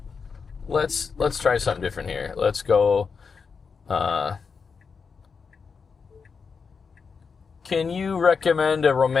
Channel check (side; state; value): right; quieter; 5.5 dB